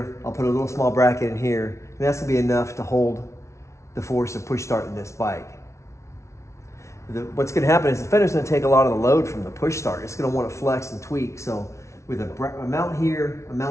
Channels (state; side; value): late; right; 0.14 ms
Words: I'll put a little small bracket in here, and that's gonna be enough to hold the force of push starting this bike. What's gonna happen is the fender's gonna take a lot of the load from the push start. It's gonna wanna flex and tweak. So with a mount here, and